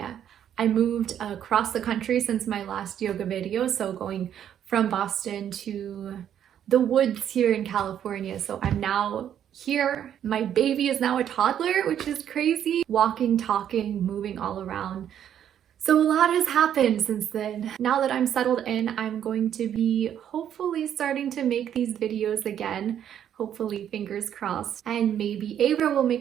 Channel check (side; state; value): left; quieter; 9.8 dB